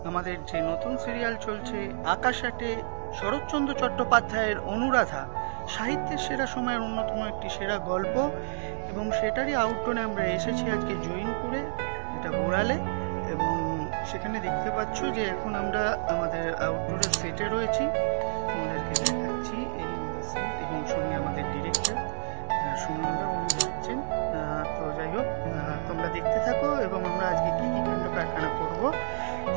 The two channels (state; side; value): silent; left; digital silence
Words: আমাদের যে নতুন সিরিয়াল চলছে আকাশ আটে, শরৎচন্দ্র চট্টোপাধ্যায়ের অনুরাধা, সাহিত্যের সেরা সময়ের অন্যতম একটি সেরা গল্প, এবং সেটারই আউটডোরে আমরা এসেছি আজকে জৈনপুরে, যেটা বোড়ালে। এবং সেখানে দেখতে পাচ্ছ যে এখন আমরা আমাদের আউটডোরের সেটে রয়েছি। তোমাদেরকে দেখাচ্ছি এই আমাদের সেট, এবং সঙ্গে আমাদের ডিরেক্টর সুমনদা, উনি যাচ্ছেন। তো যাই হোক, তোমরা দেখতে থাকো এবং আমরা আজকে কি কি কাণ্ড কারখানা করব